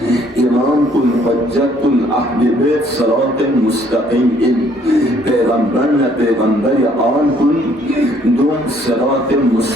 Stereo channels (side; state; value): both; normal; correlation 0.63